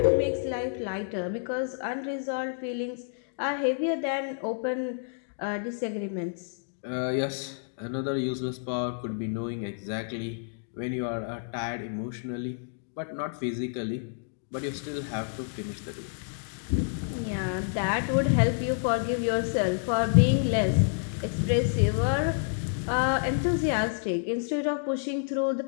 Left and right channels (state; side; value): silent; right; digital silence